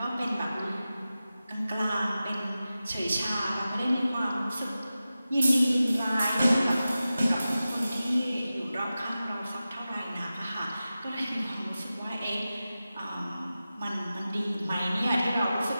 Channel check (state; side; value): inverted; both; correlation -0.94